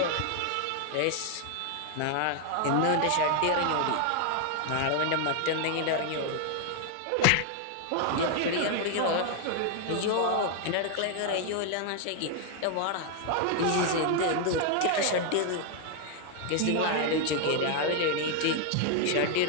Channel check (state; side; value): different; both; correlation 0.00